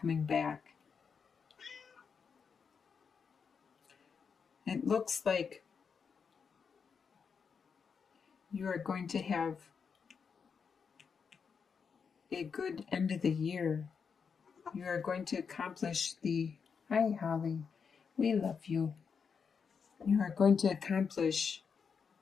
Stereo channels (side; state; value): right; quieter; 6.1 dB